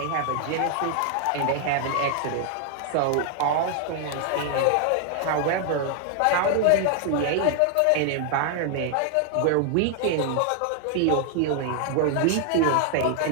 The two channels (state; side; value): different; both; correlation 0.00